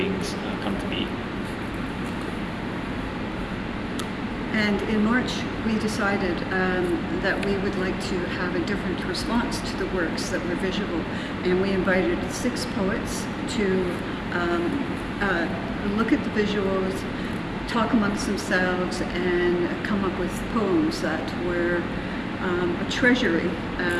come to be. And in March, we decided that we would like to have a different response to the works that were visual. And we invited 6 poets to look at the visuals, talk amongst themselves, and come up with poems that were a treasury,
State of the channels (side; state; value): both; identical; correlation 1.00